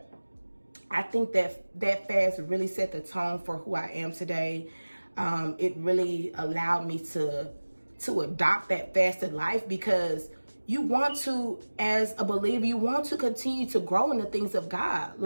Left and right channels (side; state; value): both; inverted; correlation -1.00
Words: I think that fast really set the tone for who I am today. It really allowed me to adopt that fasted life, because you want to, as a believer, you want to continue to grow in the things of God.